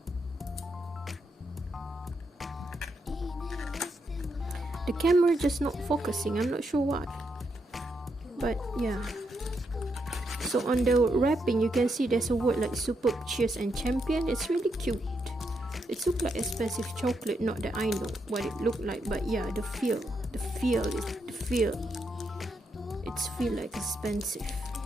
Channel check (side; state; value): both; normal; correlation 0.81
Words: The camera just not focusing, I'm not sure why, but yeah. So on the wrapping you can see there's a word like superb, cheers and champion. It's really cute. It looks like expensive chocolate, not that I know what it looked like, but yeah, the feel it's feel like expensive.